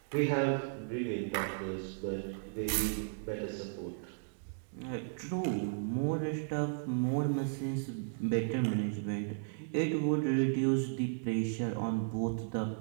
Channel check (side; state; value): left; silent; digital silence